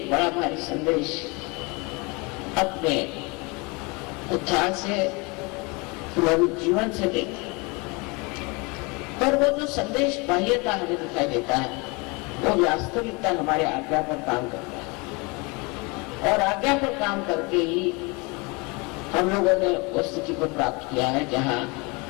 बड़ा भारी संदेश अपने उत्थान से, हमारे जीवन से देखा। पर वो जो संदेश बाह्यता हमें दिखाई देता है वो वास्तविकता हमारे आज्ञा पर काम करता है और आज्ञा पर काम करके ही हम लोगों ने उस स्थिति को प्राप्त किया है जहां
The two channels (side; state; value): right; quieter; 28.2 dB